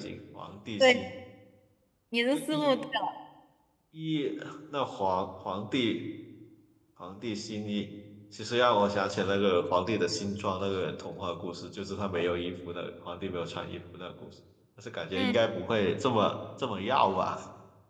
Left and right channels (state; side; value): identical; both; correlation 1.00